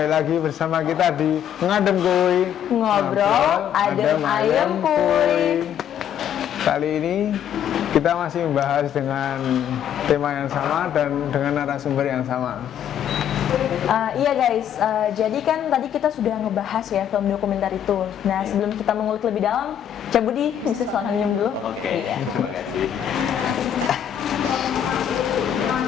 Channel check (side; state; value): right; quieter; 9.6 dB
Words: lagi bersama kita di Ngadem Kuy Ngobrol Adem Ayem Kuy. Kali ini kita masih membahas dengan tema yang sama dan dengan narasumber yang sama. Iya guys, jadi kan tadi kita sudah ngebahas ya film dokumenter itu. Nah sebelum kita mengulik lebih dalam, Cak Budi bisa selanjutnya dulu. Oke, Iya. terima kasih.